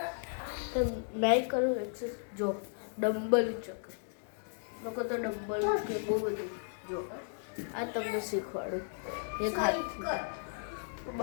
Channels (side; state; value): right; silent; digital silence